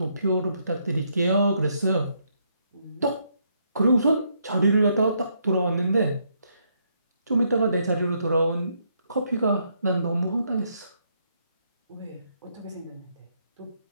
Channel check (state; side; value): inverted; both; correlation -0.74